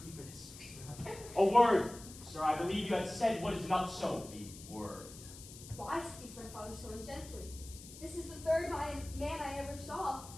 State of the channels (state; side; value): noise; left; hiss, 16 dB below the sound